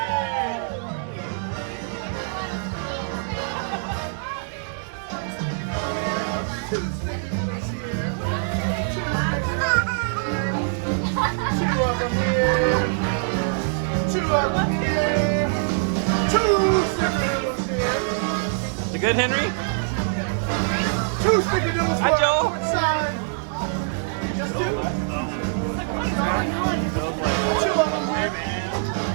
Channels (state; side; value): silent; left; digital silence